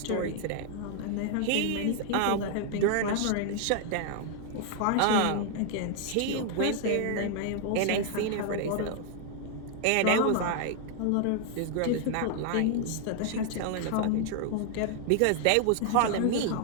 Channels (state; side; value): different; both; correlation 0.00